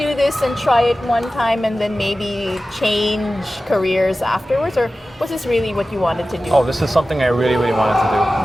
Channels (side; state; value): both; normal; correlation 0.95